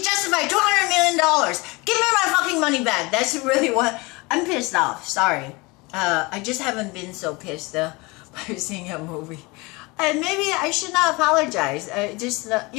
justify $200 million? Give me my fucking money back. That's really what... I'm pissed off. Sorry. I just haven't been so pissed by seeing a movie. And maybe I should not apologize. Just,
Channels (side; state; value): right; quieter; 25.2 dB